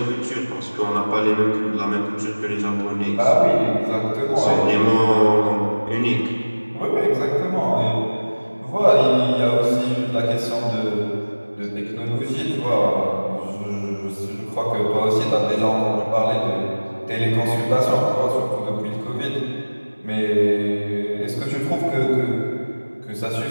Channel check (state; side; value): inverted; both; correlation -1.00